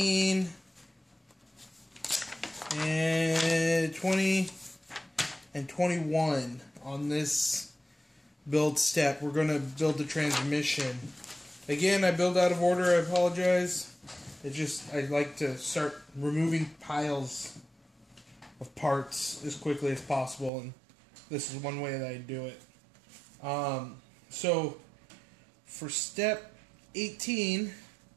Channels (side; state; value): left; drops out; at 20.5 s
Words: and 20, and 21 on this build step. We're going to build the transmission. Again, I build out of order, I apologize. It's just, I'd like to start removing piles of parts as quickly as possible, and this is one way that I do it. So, for step 18,